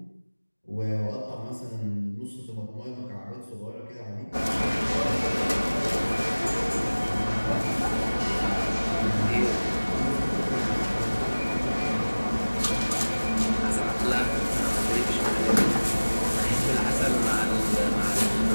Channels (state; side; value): inverted; both; correlation -1.00